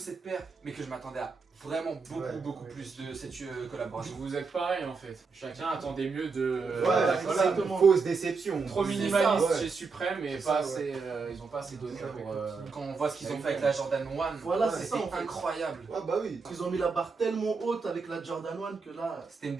paire, mais que je m'attendais à vraiment beaucoup plus de cette collaboration. Vous êtes pareil en fait. Chacun attendait mieux de Ouais, la c'est collab. une fausse déception. Trop C'est minimaliste ça, ouais. chez Supreme et C'est pas ça, assez, ils ont pas assez donné C'est ça, pour... Quand on voit ce qu'ils ont fait avec la Jordan 1, Voilà, c'était c'est ça, en fait. incroyable. Ouais, bah oui. Ils ont mis la barre tellement haute avec la Jordan 1 que là. C'était une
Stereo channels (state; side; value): quieter; left; 4.7 dB